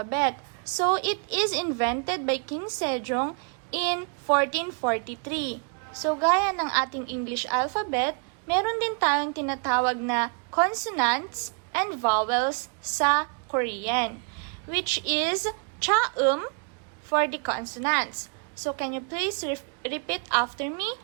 So it is invented by King Sejong in 1443. So gaya ng ating English alphabet, meron din tayong tinatawag na consonants and vowels sa Korean, which is chaum for the consonants. So, can you please repeat after me?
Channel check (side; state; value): left; quieter; 38.3 dB